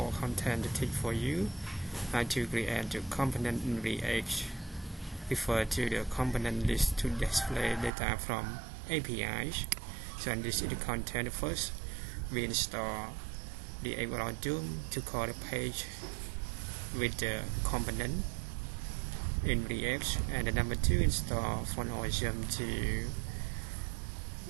content tip for you how to create the component in React. Refer to the component list to display data from APIs. So and this is the content. First we install the algorithm to call the page with the component in React, and the number 2 install fundaofwebit to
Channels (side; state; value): left; drops out; at 7.9 s